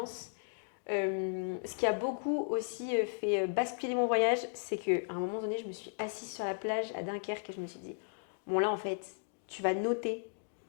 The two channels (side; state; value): right; silent; digital silence